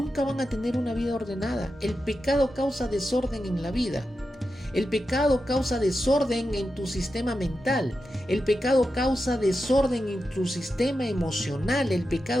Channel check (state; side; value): normal; both; correlation 0.90